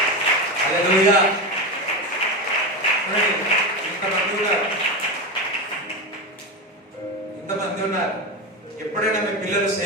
హల్లెలూయా. ఇంతమంది ఉన్నారు. ఎప్పుడైనా మీ పిల్లలు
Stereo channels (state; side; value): normal; both; correlation 0.18